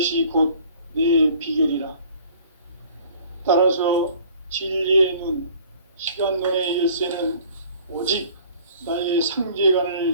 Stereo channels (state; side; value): inverted; both; correlation -0.52